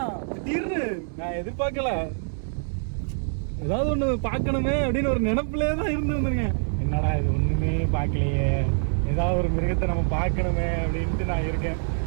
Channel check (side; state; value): left; silent; digital silence